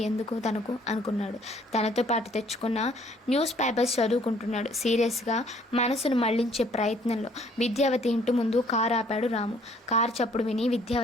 ఎందుకు తనకు అనుకున్నాడు. తనతో పాటు తెచ్చుకున్న న్యూస్ పేపర్స్ చదువుకుంటున్నాడు సీరియస్గా, మనసును మళ్లించే ప్రయత్నంలో. విద్యావతి ఇంటి ముందు కారు ఆపాడు రాము. కారు చప్పుడు విని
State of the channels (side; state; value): both; normal; correlation 0.61